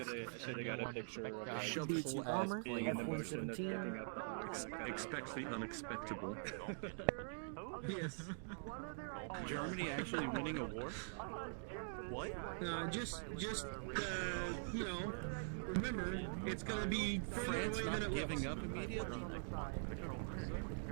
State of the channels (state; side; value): silent; left; digital silence